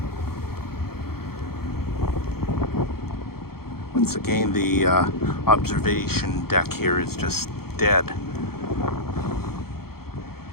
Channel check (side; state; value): right; late; 0.94 ms